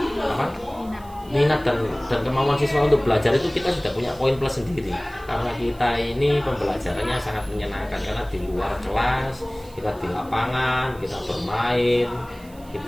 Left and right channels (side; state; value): right; noise; hiss, 25 dB below the sound